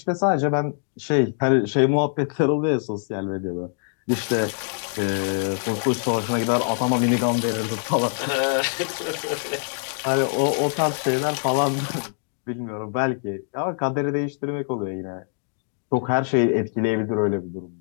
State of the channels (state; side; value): silent; right; digital silence